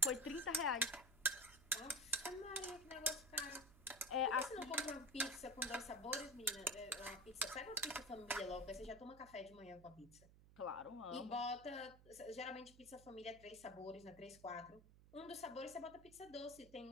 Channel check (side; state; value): right; noise; hum, 22 dB below the sound